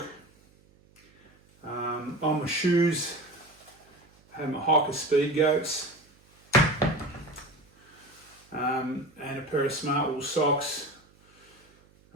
On my shoes, I had my hiker speed goats. And a pair of smart wool socks.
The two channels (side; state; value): right; noise; hum, 30 dB below the sound